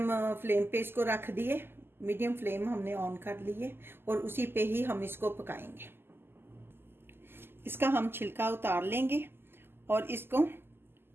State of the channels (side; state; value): left; late; 0.11 ms